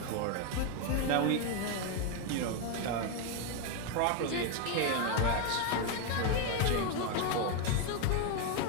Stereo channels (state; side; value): different; both; correlation 0.01